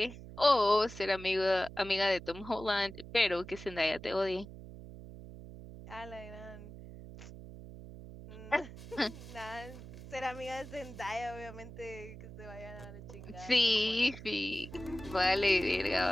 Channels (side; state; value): right; noise; hum, 14 dB below the sound